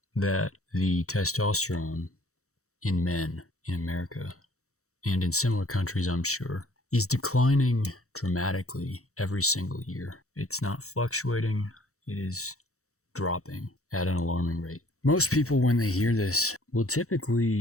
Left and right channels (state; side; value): late; right; 0.64 ms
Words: that the testosterone in men in America and in similar countries, I'm sure, is declining dramatically every single year. It's not fluctuating, it is dropping at an alarming rate. Most people, when they hear this, will